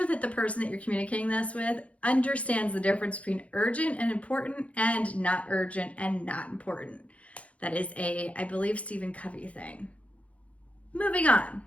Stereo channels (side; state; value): right; late; 0.064 ms